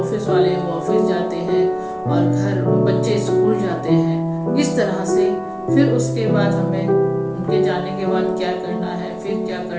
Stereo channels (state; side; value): identical; both; correlation 1.00